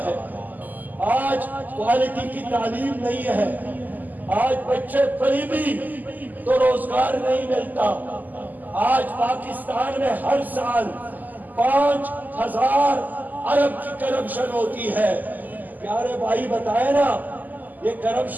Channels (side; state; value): left; late; 0.083 ms